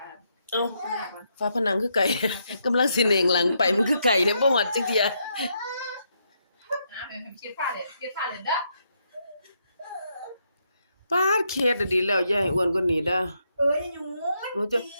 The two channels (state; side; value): inverted; both; correlation -0.78